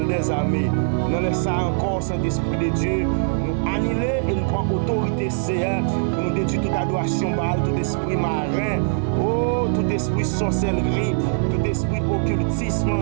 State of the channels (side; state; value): left; silent; 57 dB below the other